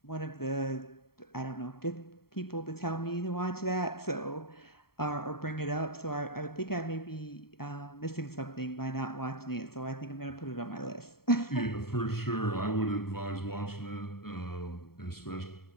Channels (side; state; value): right; late; 0.94 ms